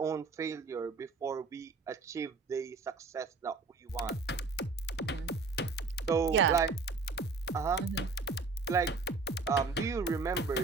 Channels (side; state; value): left; quieter; 4.0 dB